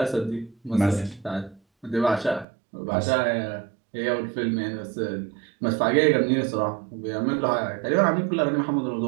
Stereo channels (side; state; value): left; drops out; at 2.5 s